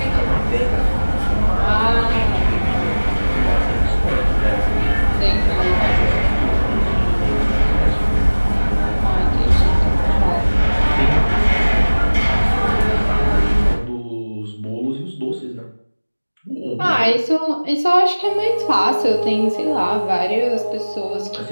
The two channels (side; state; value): both; inverted; correlation -1.00